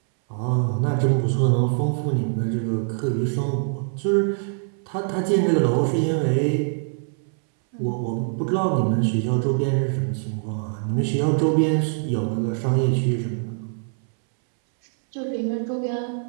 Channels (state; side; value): silent; left; 63 dB below the other